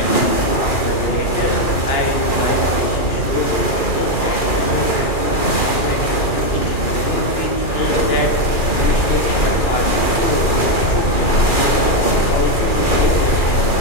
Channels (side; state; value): right; late; 2.4 ms